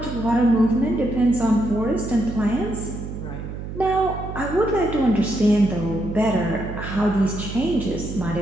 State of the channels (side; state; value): right; noise; hum, 8 dB below the sound